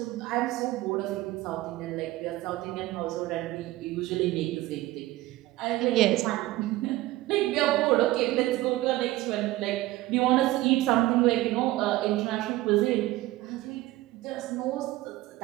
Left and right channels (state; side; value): quieter; left; 17.5 dB